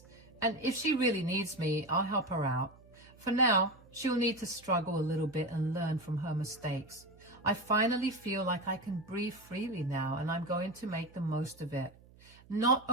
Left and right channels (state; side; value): noise; right; hum, 25 dB below the sound